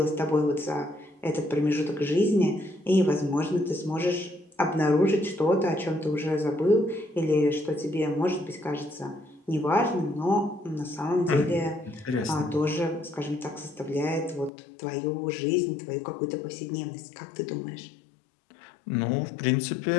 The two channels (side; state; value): right; drops out; at 14.5 s